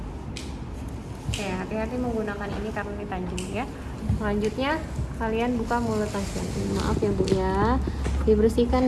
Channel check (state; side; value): identical; both; correlation 1.00